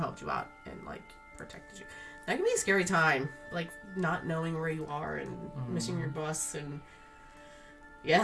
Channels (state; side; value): identical; both; correlation 1.00